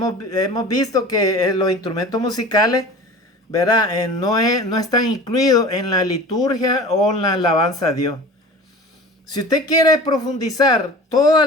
visto que los instrumentos musicales, ¿verdad? No están incluidos en la liturgia o en la alabanza a Dios. Si usted quiere profundizar toda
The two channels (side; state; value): both; normal; correlation 0.38